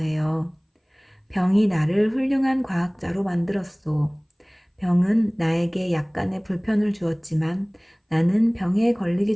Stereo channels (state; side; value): identical; both; correlation 1.00